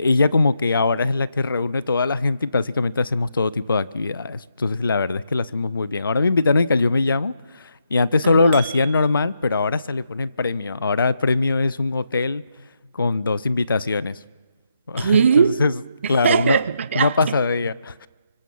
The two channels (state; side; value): inverted; both; correlation -0.79